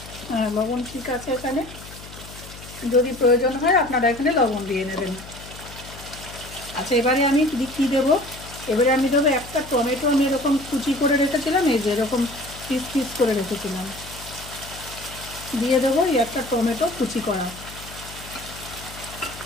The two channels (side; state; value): left; noise; hum, 16 dB below the sound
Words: হ্যাঁ, লবণ ঠিক আছে এখানে, যদি প্রয়োজন হয় আপনারা এখানে লবণ দিয়ে নেবেন। আচ্ছা, এবারে আমি কী দেবো, এবারে আমি দেবো একটা টমেটো, আমি এরকম কুচি করে রেখেছিলাম, এই যে এরকম পিস পিস করে রেখেছিলাম, দিয়ে দেবো এই একটা টমেটো কুচি করা।